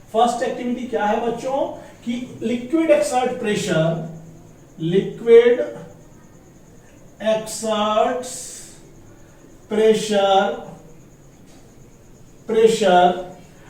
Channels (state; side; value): identical; both; correlation 1.00